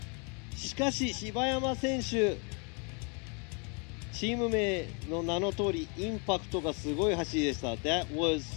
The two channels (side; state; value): right; quieter; 35.5 dB